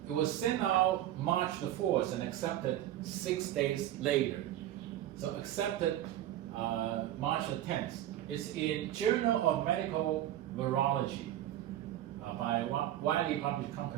was sent out March the 4th and accepted 6 days later. So accepted March the 10th. It's in Journal of Medical Virology by a widely published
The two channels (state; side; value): quieter; left; 12.8 dB